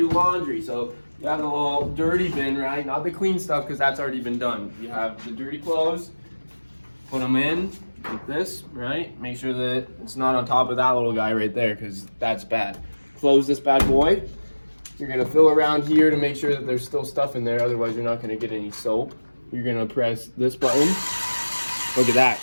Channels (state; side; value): inverted; both; correlation -1.00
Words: laundry. So you have the little dirty bin, right? Not the clean stuff because that's already been done. You have the dirty clothes, put them in like this, right? Make sure that it's not on top of that little guy right there because that's bad. Close this bad boy. You're gonna fill around here to make sure that there's still stuff in there, otherwise you're not gonna get any soap. You're gonna press this button. Look at that,